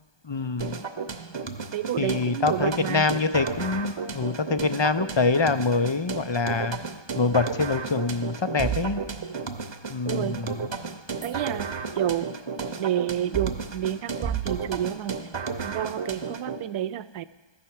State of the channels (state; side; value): late; right; 1.2 ms